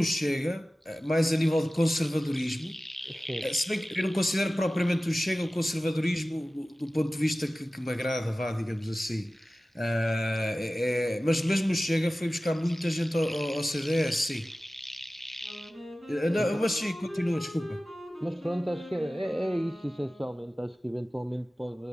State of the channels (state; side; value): normal; both; correlation 0.96